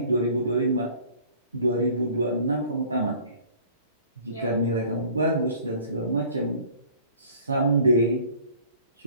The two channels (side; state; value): both; inverted; correlation -0.51